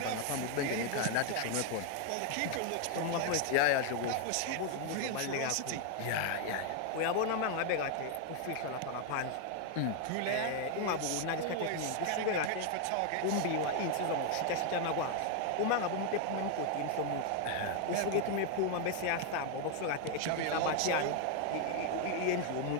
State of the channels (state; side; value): different; both; correlation 0.00